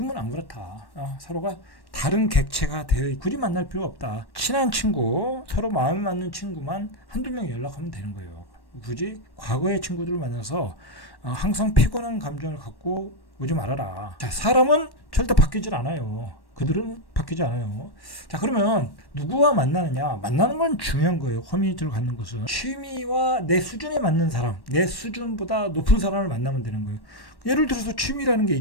안 그렇다. 서로가 다른 객체가 되어 굳이 만날 필요 없다. 친한 친구, 서로 마음이 맞는 친구만 한두 명 연락하면 되는 거예요. 굳이 과거의 친구들을 만나서 항상 피곤한 감정을 갖고 오지 말아라. 자, 사람은 절대 바뀌질 않아요. 그들은 바뀌지 않아요. 자, 그러면 누구와 만나느냐? 만나는 건 중요한 거예요. 커뮤니티를 갖는 것은 취미와 내 수준에 맞는 사람, 내 수준보다 높은 사람을 만나면 되는 거예요. 예를 들어서 취미라는 게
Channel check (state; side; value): late; right; 1.1 ms